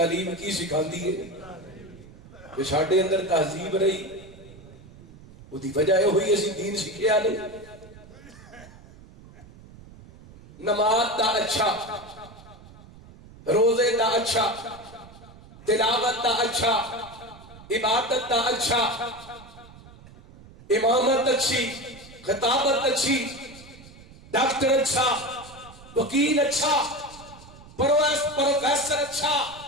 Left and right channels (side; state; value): right; noise; rumble, 20 dB below the sound